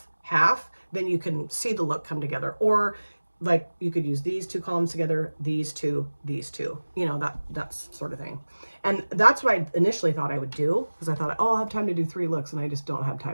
then you can see the look come together. Or like you could use these two columns together, these two, you know, that's sort of thing. And that's what I initially thought I would do, because I thought, oh, I'll have time to do 3 looks, and I just don't have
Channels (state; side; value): inverted; both; correlation -1.00